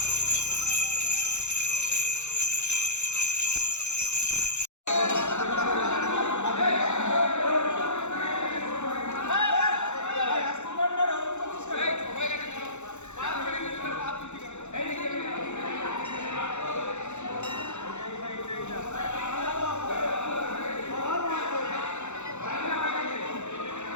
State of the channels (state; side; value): late; right; 0.83 ms